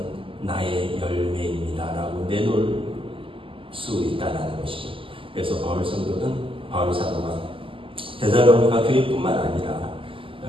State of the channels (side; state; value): left; late; 0.25 ms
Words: 나의 열매입니다 라고 내놓을 수 있다는 것입니다. 그래서 바울 사도가 데살로니가 교회뿐만 아니라